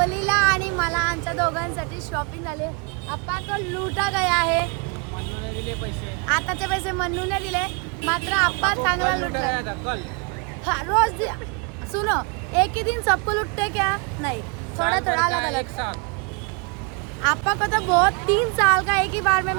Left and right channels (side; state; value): left; quieter; 33.4 dB